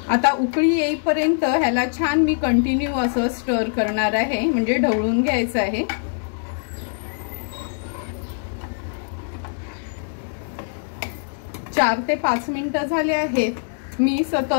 आता उकळी येईपर्यंत ह्याला छान मी कंटिन्यू असं स्टर करणार आहे, म्हणजे ढवळून घ्यायचं आहे। चार ते 5 मिनिटं झाले आहेत। मी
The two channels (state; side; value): silent; right; 64 dB below the other